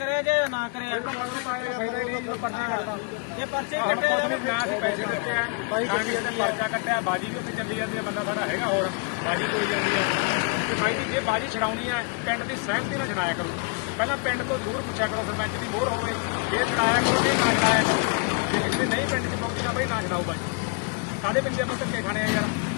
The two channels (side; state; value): right; quieter; 36.2 dB